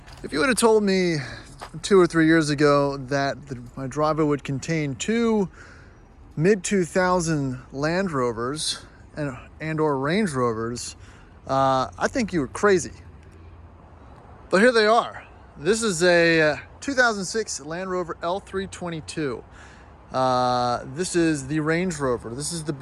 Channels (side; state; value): both; identical; correlation 1.00